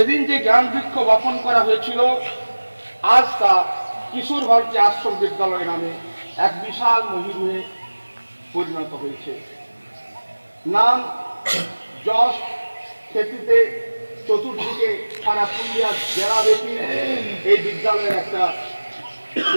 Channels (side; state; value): both; inverted; correlation -1.00